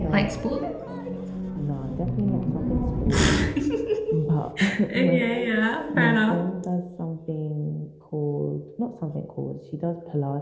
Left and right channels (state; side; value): identical; both; correlation 1.00